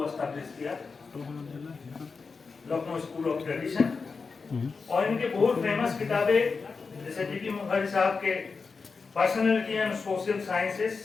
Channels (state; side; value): quieter; right; 4.8 dB